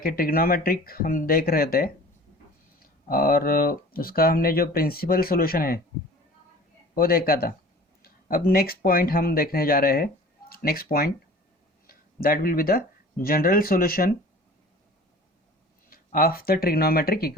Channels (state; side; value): normal; both; correlation 0.44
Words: ट्रिग्नोमेट्रिक हम देख रहे थे और उसका हमने जो प्रिंसिपल सॉल्यूशन है वो देखा था। अब नेक्स्ट पॉइंट हम देखने जा रहे हैं। Next point that will be the general solution of the trigonometric